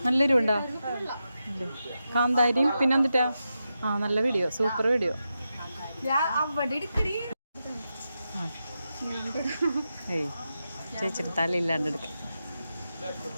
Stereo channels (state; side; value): inverted; both; correlation -0.89